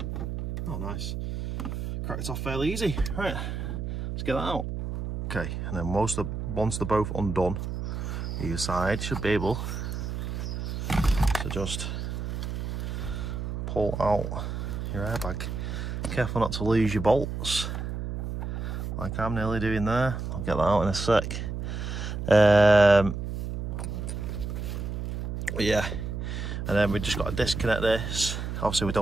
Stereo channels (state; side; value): noise; right; hum, 4 dB below the sound